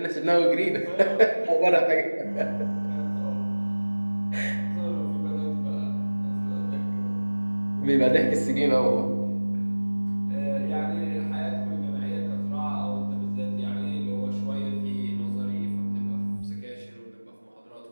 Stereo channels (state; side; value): inverted; both; correlation -1.00